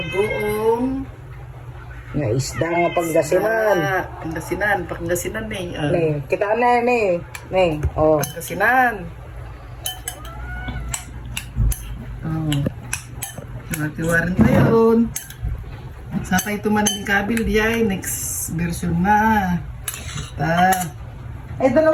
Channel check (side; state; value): both; identical; correlation 1.00